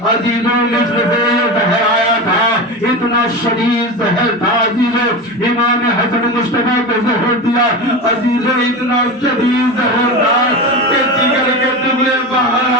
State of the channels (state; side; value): normal; both; correlation 0.24